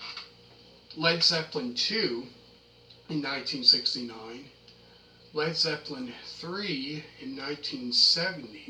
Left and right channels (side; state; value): both; identical; correlation 1.00